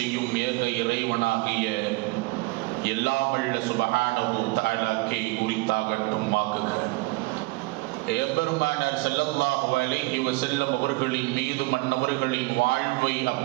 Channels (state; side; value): quieter; left; 23.8 dB